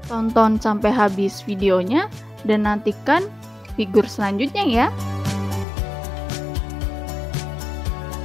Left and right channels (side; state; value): right; drops out; at 5.7 s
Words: Tonton sampai habis videonya dan nantikan figur selanjutnya ya.